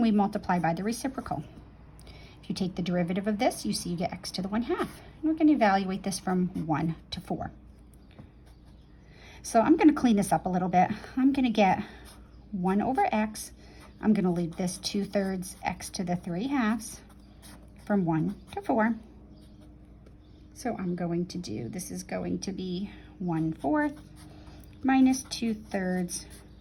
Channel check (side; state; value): both; identical; correlation 1.00